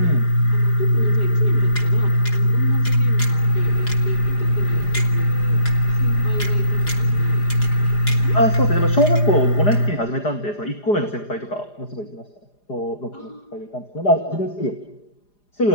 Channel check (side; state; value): right; late; 4.9 ms